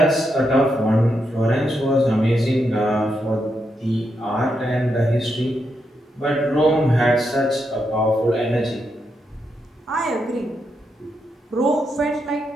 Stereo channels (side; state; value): both; normal; correlation 0.82